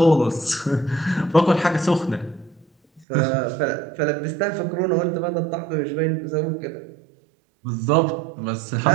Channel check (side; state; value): left; drops out; at 3.1 s